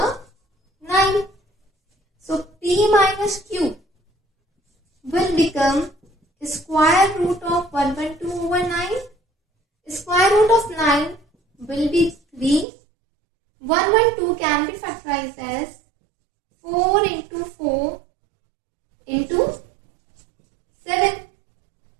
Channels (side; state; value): left; drops out; at 12.7 s